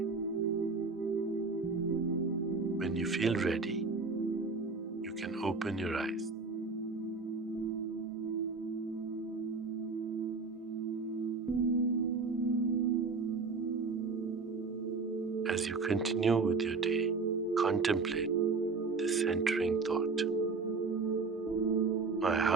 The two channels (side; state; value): left; quieter; 4.3 dB